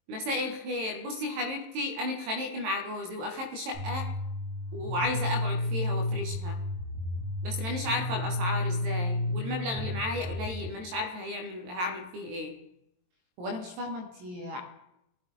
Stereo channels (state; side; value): late; left; 22 ms